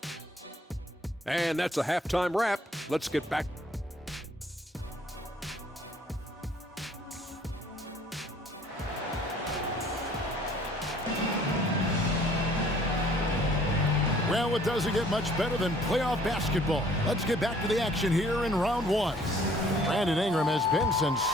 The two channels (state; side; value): normal; both; correlation 0.57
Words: And that's a halftime wrap. Let's get back. Well, it doesn't get much better than playoff basketball. Let's get back to the action here in round 1. Brandon Ingram has been